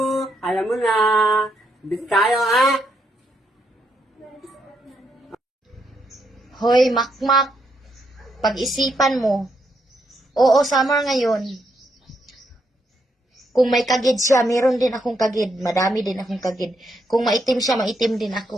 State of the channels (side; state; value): both; normal; correlation 0.78